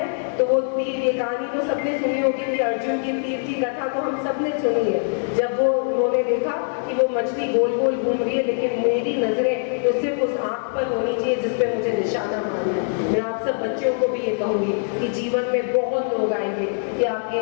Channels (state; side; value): silent; right; digital silence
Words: तो वो तीर, ये कहानी तो सबने सुनी होगी कि अर्जुन की तीर की कथा तो हम सबने सुनी है। जब वो उन्होंने देखा कि वो मछली गोल गोल घूम रही है, लेकिन मेरी नजरें तो सिर्फ उस आंख पर होनी चाहिए जिसपे मुझे निशाना मारना है। मैं आप सब बच्चों को भी ये कहूंगी कि जीवन में बहुत लोग आएंगे कि आप ये